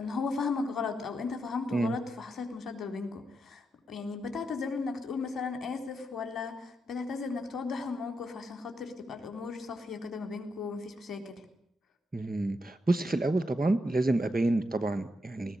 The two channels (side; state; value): both; normal; correlation 0.83